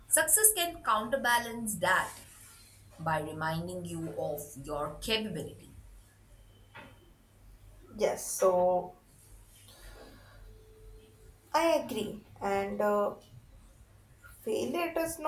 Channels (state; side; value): identical; both; correlation 1.00